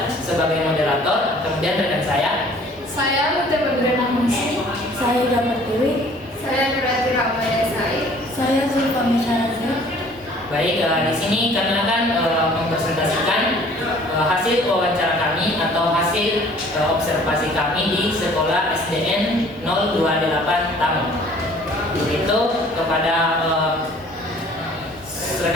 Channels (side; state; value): both; normal; correlation 0.53